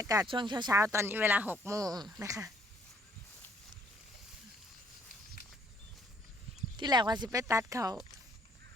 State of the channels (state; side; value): normal; both; correlation 0.64